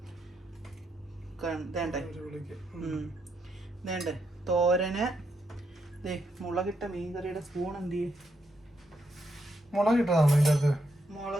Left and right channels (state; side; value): normal; both; correlation 0.80